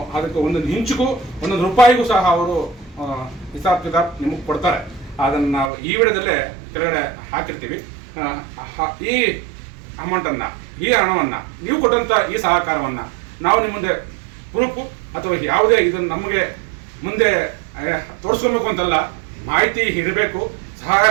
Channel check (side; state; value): left; drops out; at 5.7 s